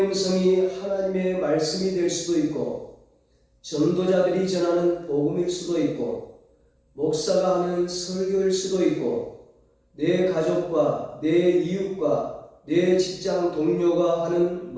음성이 하나님의 말씀이 될 수도 있고, 전도자들이 전하는 복음일 수도 있고, 목사가 하는 설교일 수도 있고, 내 가족과 내 이웃과 내 직장 동료가 하는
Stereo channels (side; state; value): both; identical; correlation 1.00